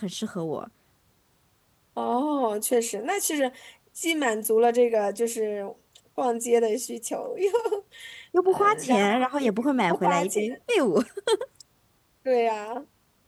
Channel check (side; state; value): both; identical; correlation 1.00